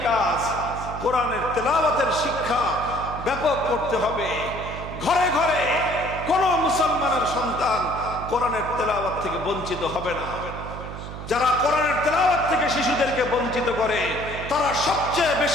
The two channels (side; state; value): right; noise; hum, 10 dB below the sound